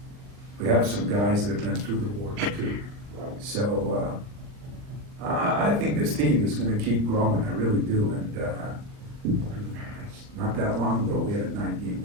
some guys that have been through the wars too. So I think this team is gonna keep growing, I really do, and not that long ago, we had a 9-game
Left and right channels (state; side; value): late; left; 40 ms